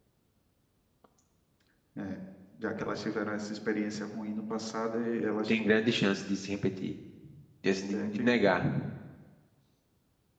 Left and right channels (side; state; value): both; identical; correlation 1.00